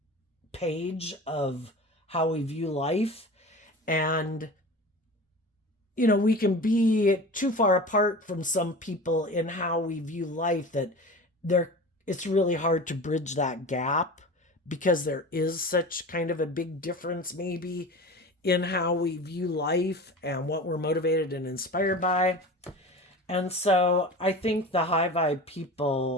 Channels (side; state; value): both; normal; correlation 0.34